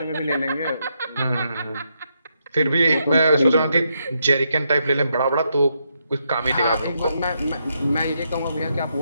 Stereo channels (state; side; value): inverted; both; correlation -0.80